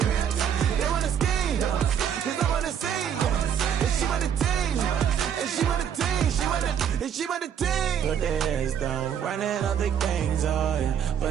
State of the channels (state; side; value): quieter; left; 8.6 dB